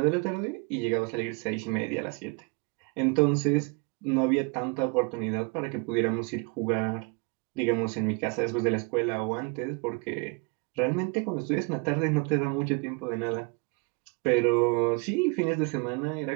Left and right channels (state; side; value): quieter; left; 31.2 dB